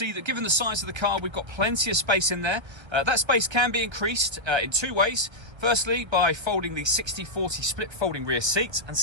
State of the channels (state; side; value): late; left; 1.3 ms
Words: that given the size of the car, we've got plenty of space in there. That space can be increased in two ways. Firstly, by folding the 60/40 split folding rear seat, and